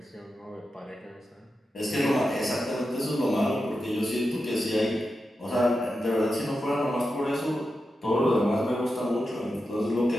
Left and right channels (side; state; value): both; normal; correlation 0.90